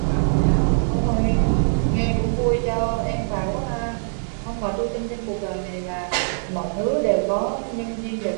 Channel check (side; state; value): left; silent; digital silence